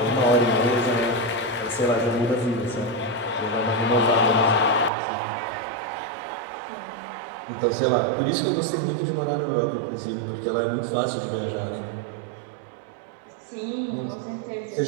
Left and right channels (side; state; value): left; drops out; at 4.9 s